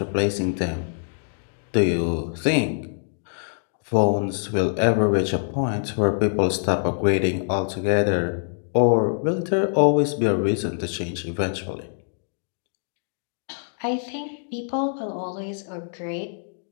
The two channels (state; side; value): silent; right; digital silence